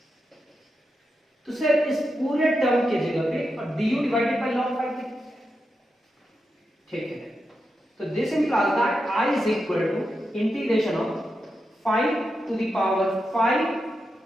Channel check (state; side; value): normal; both; correlation 0.87